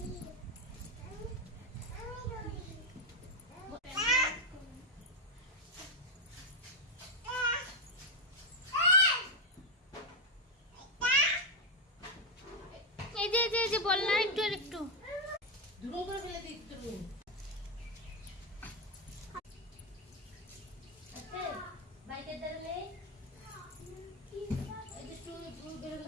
এই যে বল না, একটু আর একটু দুটো করে ফেলে দিই তুমি। আচ্ছা বাইকে দাঁড়ালে এই যে তুই বের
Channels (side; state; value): both; normal; correlation 0.05